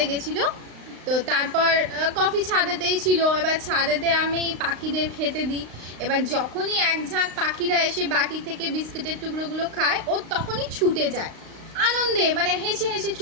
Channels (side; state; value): left; late; 35 ms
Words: গেছিল। তো তারপর কফি ছাদেতেই ছিল। এবার ছাদেতে আমি পাখিদের খেতে দিই। এবার যখনই এক ঝাঁক পাখিরা এসে বাটি থেকে বিস্কুটের টুকরোগুলো খায়, ও তখনই ছুটে যায় আনন্দে, মানে হেসে হেসে